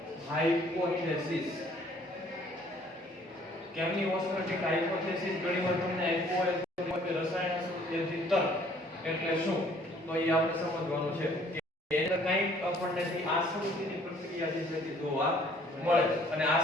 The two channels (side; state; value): both; normal; correlation 0.58